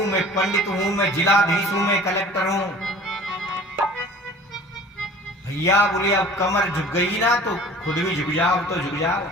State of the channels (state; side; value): normal; both; correlation 0.45